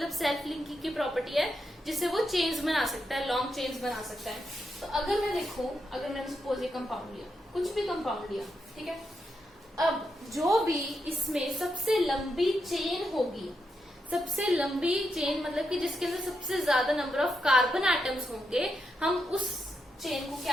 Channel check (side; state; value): both; normal; correlation 0.84